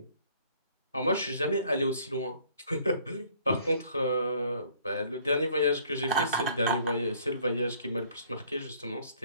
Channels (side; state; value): both; inverted; correlation -0.59